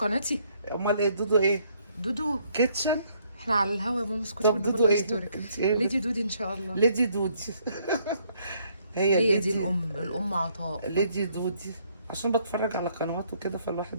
امال ايه دودو ايه؟ دودو. كيتشن. احنا على الهوا يا ماما، اسكتي طب والنبي دودو الله ايه؟ يسترك. انت ايه ليدي دودي ان شاء الله. ليدي دودي. هي هي دي ليدي. الام عطاء. ليدي دودي. عشان بتفرج على قنوات وكده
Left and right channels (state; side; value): inverted; both; correlation -0.68